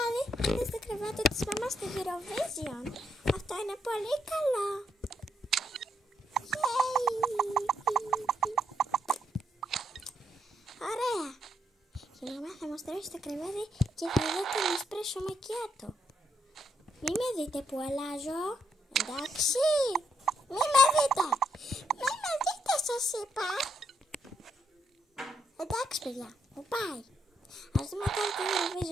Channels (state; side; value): normal; both; correlation 0.77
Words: είδες το κρεβάτι της μαμάς στη Eurovision. Αυτό είναι πολύ καλό. Ωραία. Η μαμά θα μας τρώσει το κρεβάτι και θα δω τον εσπρέσο μακιάτο. Μη με δείτε που αλλάζω. Εντάξει. Μη με δείτε. Μη με δείτε σας είπα. Εντάξει παιδιά. Μου πάει. Ας δούμε τώρα το